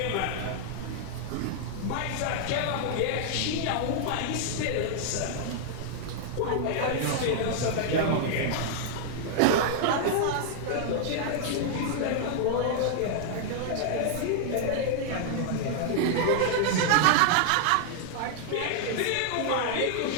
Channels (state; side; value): different; both; correlation -0.01